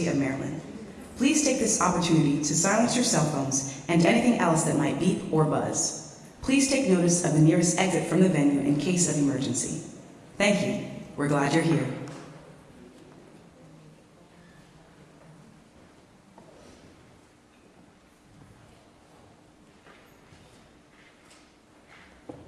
of Maryland. Please take this opportunity to silence your cell phones and anything else that might beep or buzz. Please take notice of the nearest exit from the venue in case of emergency. Thank you. We're glad you're here.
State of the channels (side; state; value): both; identical; correlation 1.00